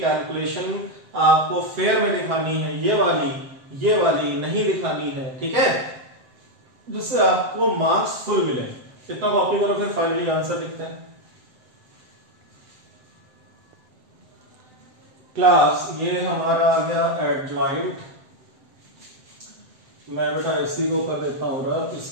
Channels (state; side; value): late; left; 7.7 ms